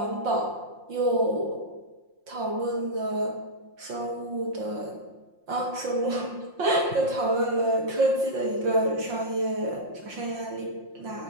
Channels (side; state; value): left; late; 5.7 ms